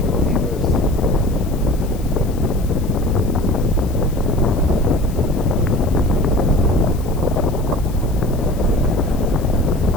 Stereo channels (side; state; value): left; noise; hiss, 21 dB below the sound